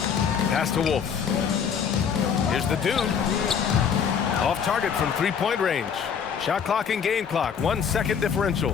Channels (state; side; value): quieter; right; 7.1 dB